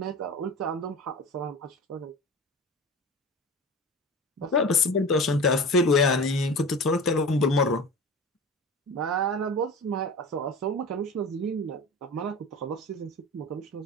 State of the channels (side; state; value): both; normal; correlation 0.33